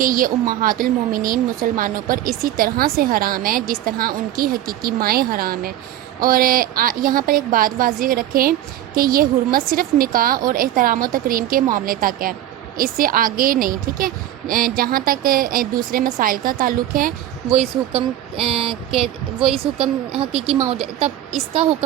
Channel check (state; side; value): quieter; left; 12.9 dB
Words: یہ امہات المومنین مسلمانوں پر اسی طرح سے حرام ہے جس طرح ان کی حقیقی مائیں حرام ہیں۔ اور یہاں پر ایک بات واضح رکھیں کہ یہ حرمت صرف نکاح اور احترام و تکریم کے معاملے تک ہے، اس سے آگے نہیں۔ ٹھیک ہے، جہاں تک دوسرے مسائل کا تعلق ہے وہ اس حکم حقیقی ماؤ، تب اس کا